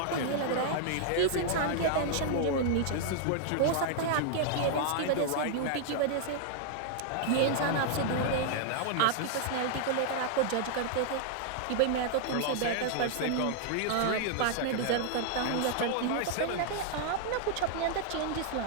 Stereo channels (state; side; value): different; both; correlation -0.01